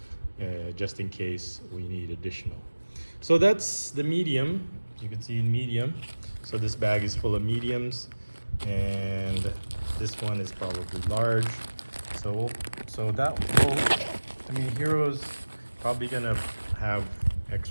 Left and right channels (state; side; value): inverted; both; correlation -1.00